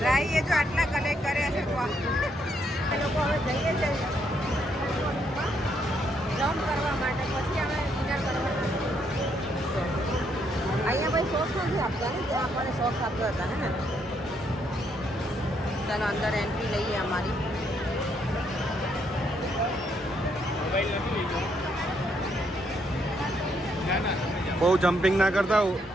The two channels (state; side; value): normal; both; correlation 0.74